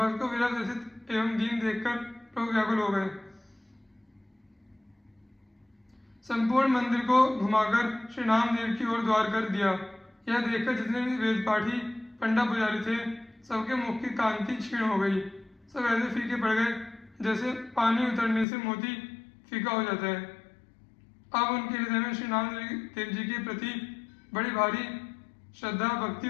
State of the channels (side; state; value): right; drops out; at 18.4 s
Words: को विरह व्यथित एवं दीन देखकर प्रभु व्याकुल हो गए। संपूर्ण मंदिर को घुमाकर श्री नामदेव की ओर द्वार कर दिया। यह देखकर जितने भी वेद पाठी पंडा पुजारी थे, सबके मुख की कांति क्षीण हो गई। सब ऐसे फीके पड़ गए जैसे पानी उतरने से मोती फीका हो जाता है। अब उनके हृदय में श्री नामदेव जी के प्रति बड़ी भारी श्रद्धा भक्ति